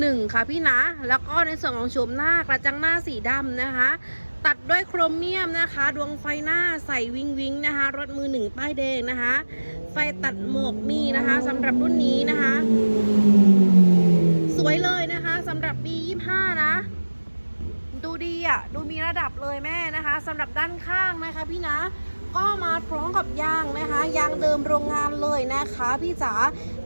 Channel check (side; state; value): both; inverted; correlation -1.00